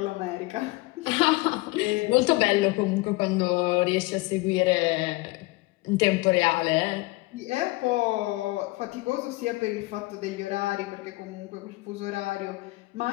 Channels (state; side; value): quieter; right; 22.3 dB